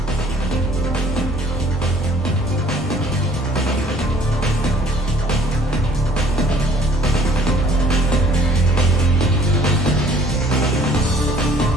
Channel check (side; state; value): both; normal; correlation 0.57